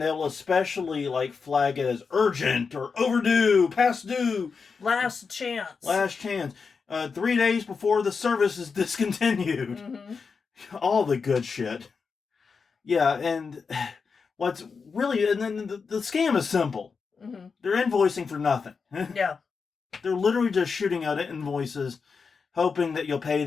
especially flag it as urgent or overdue, past due. Last chance. 3 days before the service is discontinued. Mm-hmm. All the good shit. Yeah, and what's really... And then the scam is simple. Mm-hmm. They're invoicing for nothing. Yeah. They're literally just shooting out invoices, hoping that you'll pay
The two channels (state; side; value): quieter; right; 5.2 dB